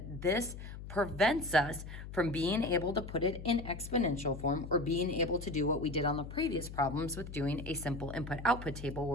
this prevents us from being able to put it in exponential form or being able to do what we did on the previous problems with doing a simple input-output table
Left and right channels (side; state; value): left; noise; hum, 11 dB below the sound